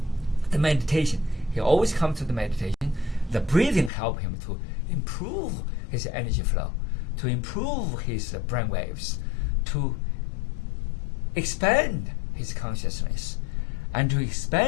the meditation. He always comes to the meditation. The breathing help him to improve his energy flow, to improve his brain waves, to expand his consciousness, and to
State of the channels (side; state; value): right; drops out; at 3.9 s